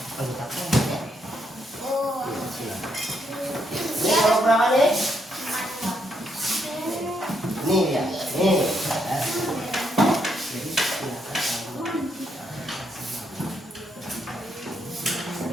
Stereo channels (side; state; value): both; normal; correlation 0.76